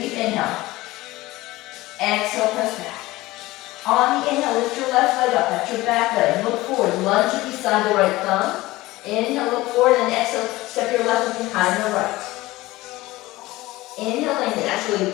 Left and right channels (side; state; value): right; quieter; 18.8 dB